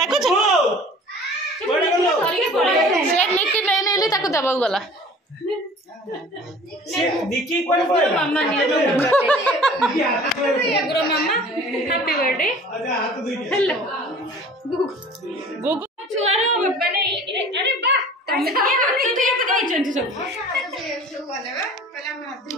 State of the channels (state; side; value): normal; both; correlation 0.46